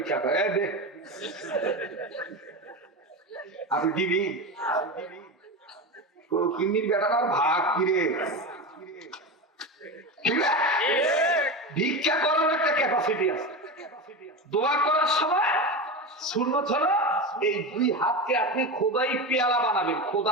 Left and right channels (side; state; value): both; normal; correlation 0.21